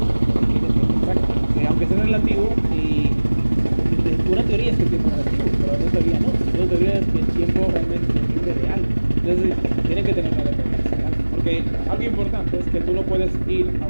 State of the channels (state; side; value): inverted; both; correlation -1.00